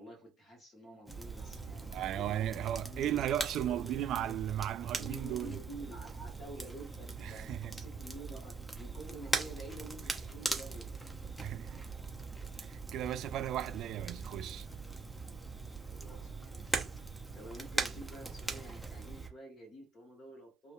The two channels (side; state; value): left; quieter; 5.6 dB